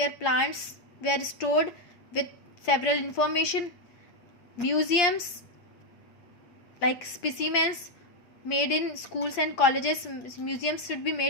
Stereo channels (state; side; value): late; right; 8.5 ms